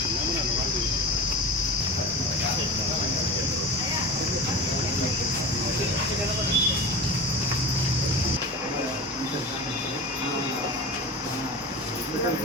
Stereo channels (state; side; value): normal; both; correlation 0.30